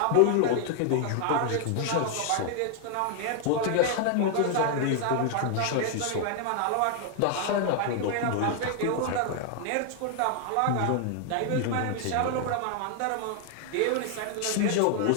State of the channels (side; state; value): both; different; correlation 0.00